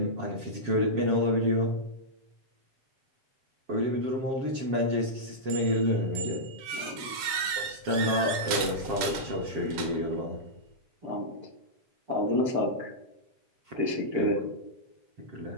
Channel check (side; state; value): left; late; 8.2 ms